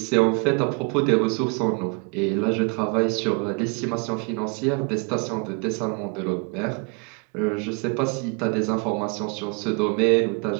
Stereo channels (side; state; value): left; quieter; 33.8 dB